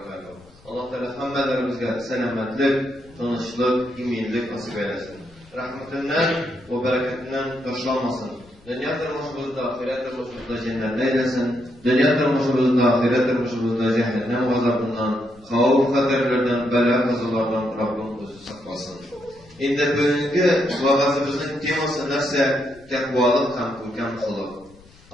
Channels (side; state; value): left; noise; rumble, 26 dB below the sound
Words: Allah Teala hamdelerimizge selametlik, tanışlık, iminlik nasip eylesin. Rahmetinden ve bereketinden taşlanmasın. Dünya tarmışımızda, ahiret tarmışımızda cennet eylesin. Dünya tarmışımızda, ahiret tarmışımızda cehennem gazabından, havf kaderlerden, bela kazalardan Rabbim bizi saklasın. Indi bugünkü vaazimizin teması nerse takvalık ham ko'rkam qilib.